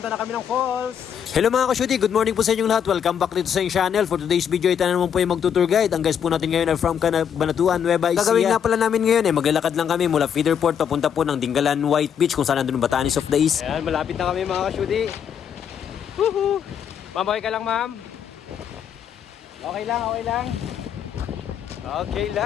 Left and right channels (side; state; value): right; quieter; 8.3 dB